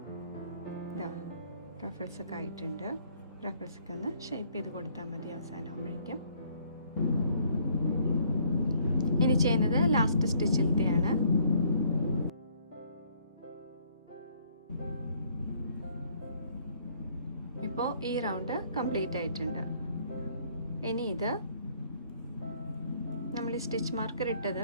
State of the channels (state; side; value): inverted; both; correlation -0.63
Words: റഫിൾസ് ഒക്കെ ആയിട്ടുണ്ട്. റഫിൾസ് ഒക്കെ ഒന്ന് ഷേപ്പ് ചെയ്ത് കൊടുത്താൽ മതി അവസാനമാകുമ്പോഴേക്കും. ഇനി ചെയ്യുന്നത് ലാസ്റ്റ് സ്റ്റിച്ചിലത്തെയാണ്. ഇപ്പോൾ ഈ റൗണ്ട് കംപ്ലീറ്റ് ആയിട്ടുണ്ട്. ഇനി ഇത് നമ്മൾ ഈ സ്റ്റിച്ച് മാർക്കർ